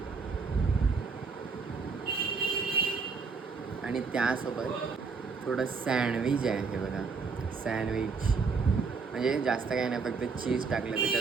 आणि त्यासोबत थोडं सँडविच आहे. हे बघा, सँडविच म्हणजे जास्त काही नाही, फक्त चीज टाकलं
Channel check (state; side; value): quieter; left; 4.9 dB